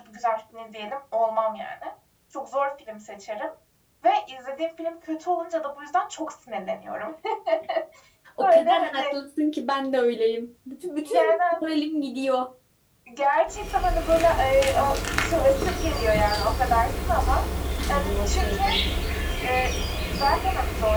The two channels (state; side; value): identical; both; correlation 1.00